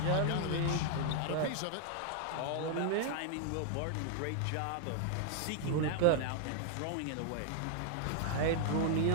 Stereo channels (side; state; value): both; different; correlation 0.00